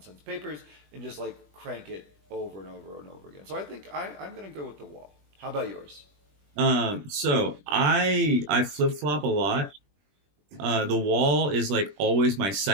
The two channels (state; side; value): late; left; 20 ms